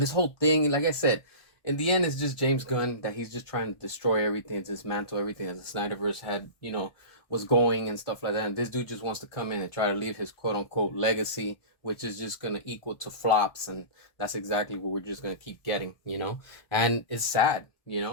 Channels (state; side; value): late; right; 1.2 ms